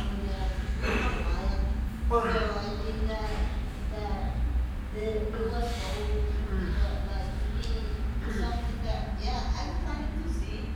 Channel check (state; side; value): identical; both; correlation 1.00